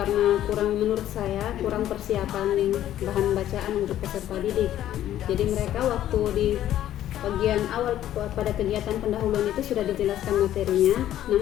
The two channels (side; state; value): right; quieter; 12.2 dB